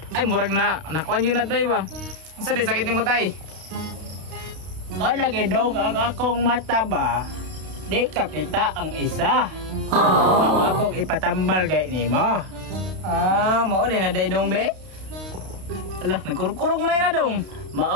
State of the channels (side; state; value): left; late; 32 ms